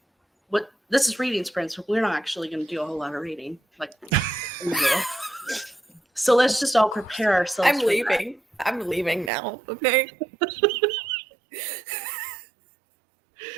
is reading sprints. We're not actually going to do a whole lot of reading, so let's just all prepare ourselves. I'm leaving. That. I'm leaving now. Okay.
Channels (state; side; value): drops out; left; at 9.3 s